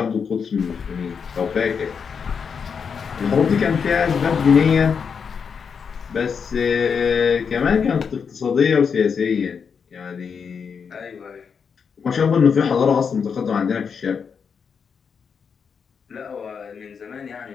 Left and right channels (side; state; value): right; quieter; 6.3 dB